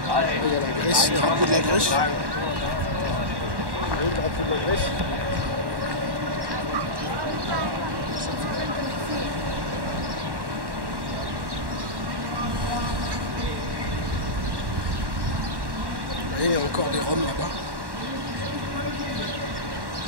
a la Grèce, le drapeau de la Grèce. Vous voyez le drapeau de la Grèce? Vous voyez, il y a encore des roms là-bas.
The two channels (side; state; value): left; late; 1.1 ms